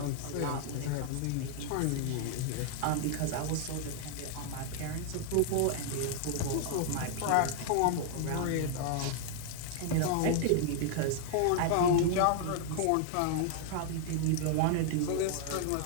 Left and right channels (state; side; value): different; both; correlation 0.00